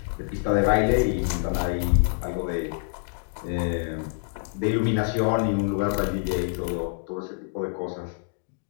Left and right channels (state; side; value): silent; right; digital silence